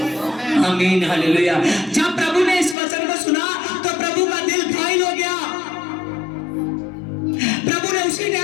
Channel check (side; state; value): right; drops out; at 2.8 s